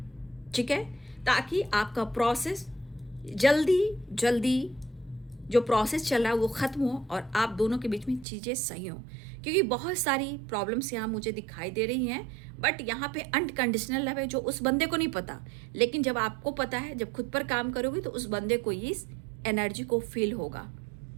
ठीक है, ताकि आपका प्रोसेस जल्दी जो प्रोसेस चल रहा है वो ख़त्म हो और आप दोनों के बीच में चीज़ें सही हों। क्योंकि बहुत सारी प्रॉब्लम्स यहाँ मुझे दिखाई दे रही हैं, बट यहाँ पे अनकंडीशनल लव है जो उस बंदे को नहीं पता, लेकिन जब आपको पता है, जब खुद पर काम करोगे तो उस बंदे को इस एनर्जी को फील होगा।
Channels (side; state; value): left; drops out; at 8.2 s